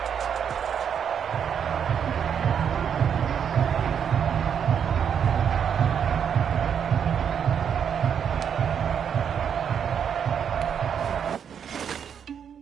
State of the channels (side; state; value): left; quieter; 7.9 dB